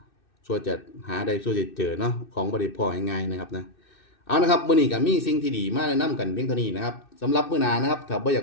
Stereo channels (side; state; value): right; late; 2.6 ms